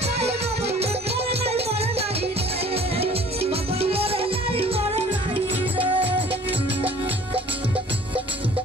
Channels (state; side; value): normal; both; correlation 0.51